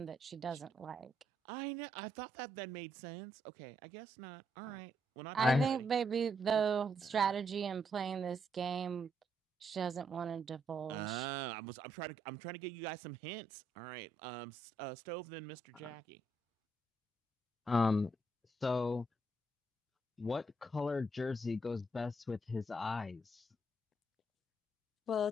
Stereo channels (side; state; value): both; normal; correlation 0.76